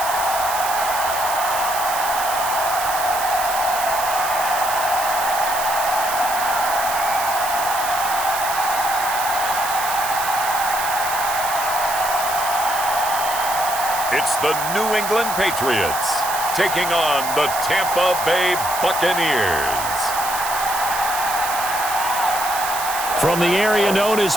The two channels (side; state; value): right; noise; hiss, 6 dB below the sound